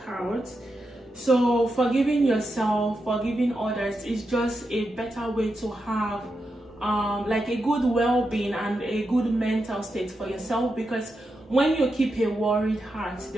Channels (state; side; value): normal; both; correlation 0.87